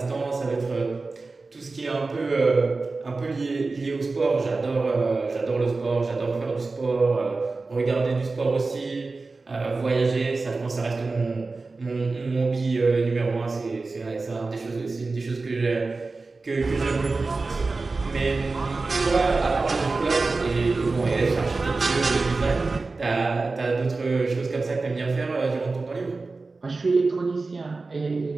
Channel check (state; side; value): quieter; left; 3.7 dB